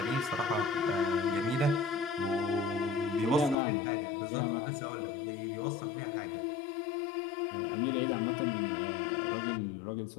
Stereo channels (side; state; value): right; drops out; at 3.6 s